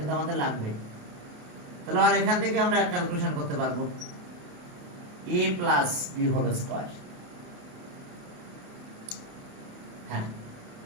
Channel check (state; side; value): late; left; 28 ms